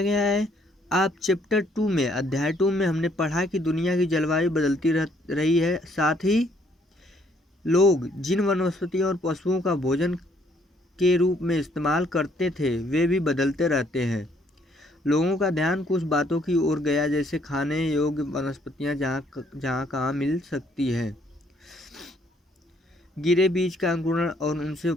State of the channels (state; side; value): normal; both; correlation 0.67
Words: गया है। आप चैप्टर 2 में अध्याय 2 में हमने पढ़ा कि दुनिया की जलवायु बदलती रही है, साथ ही लोग जिन वनस्पतियों और पशुओं का भोजन के रूप में इस्तेमाल करते थे वे भी बदलते रहते हैं। लोगों का ध्यान कुछ बातों की ओर गया, जैसे खाने योग्य वनस्पतियां जहाँ कहाँ मिल सकती है, गिरे बीज का अंकुरण और उनसे